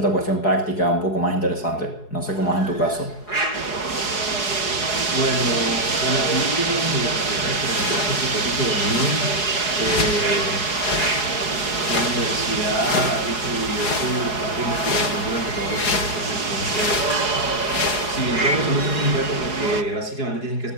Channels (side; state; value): right; late; 4.8 ms